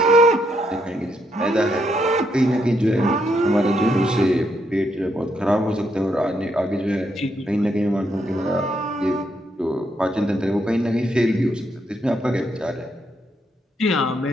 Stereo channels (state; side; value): normal; both; correlation 0.76